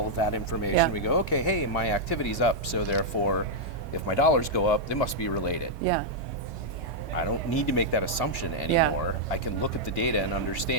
of that information. Yeah. We go, okay, hey, my activity's up, so therefore, if my dollars go up, they must be related. Yeah. I don't need to make that assumption anymore. I can look at the data and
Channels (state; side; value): normal; both; correlation -0.05